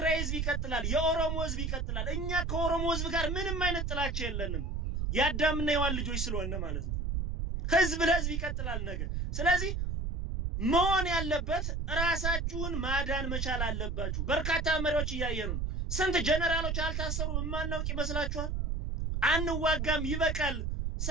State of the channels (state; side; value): noise; right; rumble, 1 dB below the sound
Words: ህዝብ ይቀጥላል፣ የኦሮሞ ህዝብ ይቀጥላል። እኛ ከኦሮሞ ህዝብ ጋር ምንም አይነት ጥላቻ የለንም፣ ያዳምና የዋን ልጆች ስለሆነ ማለት ነው። ህዝብ ለህዝብ ይቀጥላል ነገ። ስለዚህ መሆን ያለበት ራሳችሁን ማዳን መቻል አለባችሁ። በርካታ መሪዎች እያየኑ ስንት ጀነራሎች አልታሰሩም የማናውቅ ይመስላችኋል? አንዋጋም ይበቃል፣